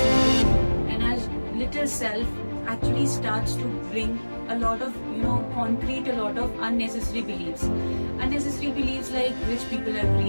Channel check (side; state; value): both; inverted; correlation -1.00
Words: And as little self actually starts to bring a lot of, concrete a lot of unnecessary beliefs. Unnecessary beliefs like rich people are